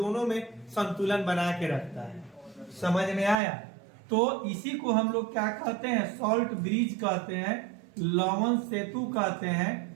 में संतुलन बना के रखता है। समझ में आया। तो इसी को हम लोग क्या कहते हैं, सॉल्ट ब्रिज कहते हैं, लवण सेतु कहते हैं।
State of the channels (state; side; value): drops out; left; at 3.4 s